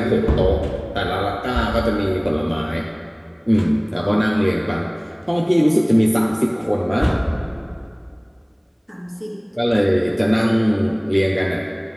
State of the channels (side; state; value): both; identical; correlation 1.00